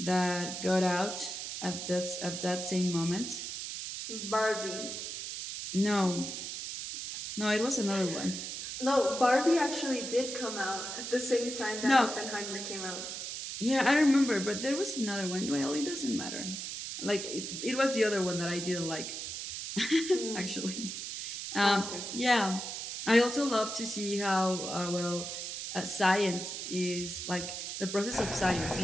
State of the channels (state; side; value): noise; right; hiss, 6 dB below the sound